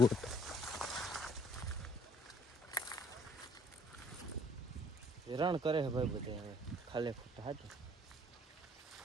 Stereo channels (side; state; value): both; normal; correlation 0.59